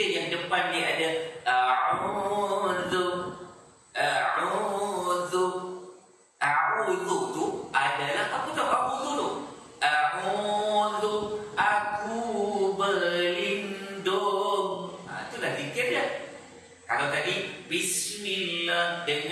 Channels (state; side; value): identical; both; correlation 1.00